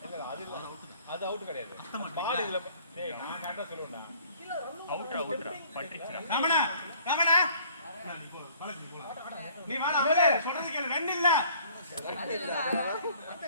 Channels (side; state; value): both; inverted; correlation -0.56